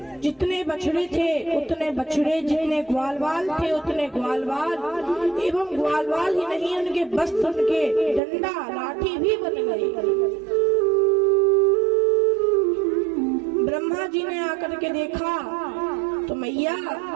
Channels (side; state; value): left; drops out; at 8.2 s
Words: जितने बछड़े थे उतने बछड़े, जितने ग्वालवाल थे उतने ग्वालवाल, एवं ग्वालवाल ही नहीं उनके वस्त्र, उनके डंडा लाठी भी बन गए। ब्रह्मा जी ने आकर के देखा तो मैया